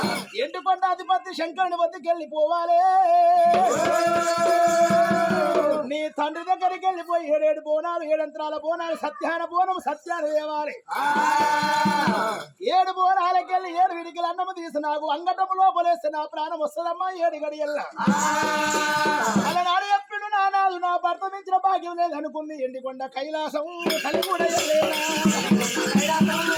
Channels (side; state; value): both; identical; correlation 1.00